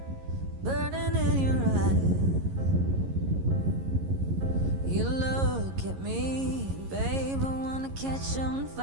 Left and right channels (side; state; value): left; late; 11 ms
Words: burning in your eyes. You look at me, babe, I wanna catch on